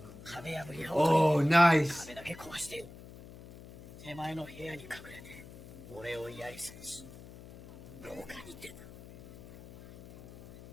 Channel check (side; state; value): left; noise; hum, 17 dB below the sound